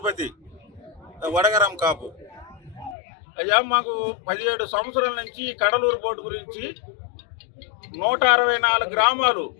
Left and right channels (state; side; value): drops out; right; at 3.0 s